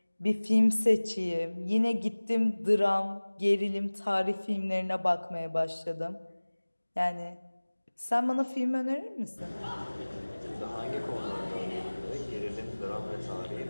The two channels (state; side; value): inverted; both; correlation -1.00